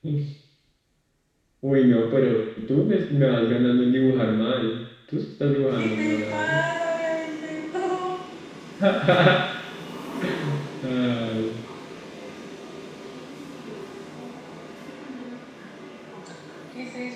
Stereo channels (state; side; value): identical; both; correlation 1.00